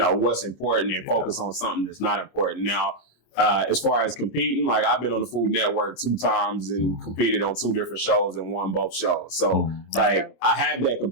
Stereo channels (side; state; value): right; late; 26 ms